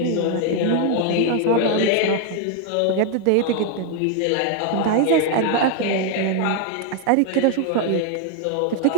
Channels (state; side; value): different; both; correlation 0.01